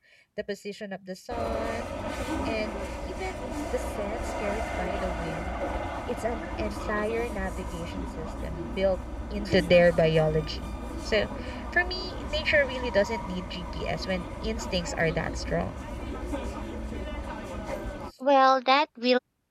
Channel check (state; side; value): identical; both; correlation 1.00